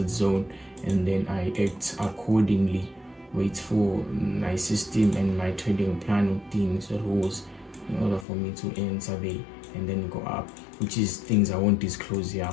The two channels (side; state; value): right; drops out; at 8.2 s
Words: zone, and then I act accordingly, wait for my system and my trading plan routines, rules, in order for me to enter there and then go up, which is things I won't disclose here,